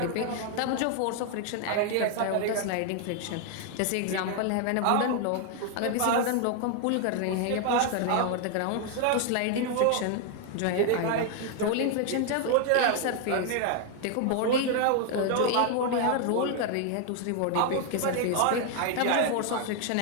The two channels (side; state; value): both; different; correlation 0.00